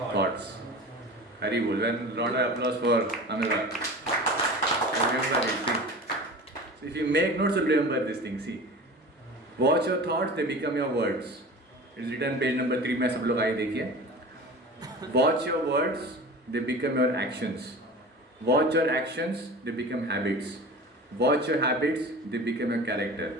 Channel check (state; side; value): normal; both; correlation 0.36